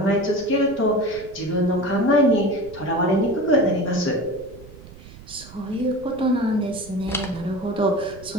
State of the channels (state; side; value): noise; right; rumble, 19 dB below the sound